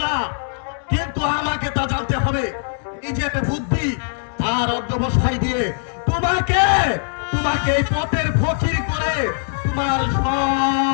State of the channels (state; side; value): silent; right; 63 dB below the other